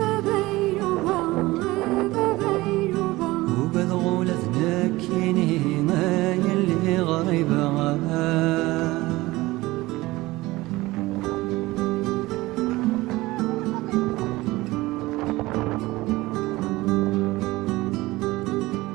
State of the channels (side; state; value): left; quieter; 19.6 dB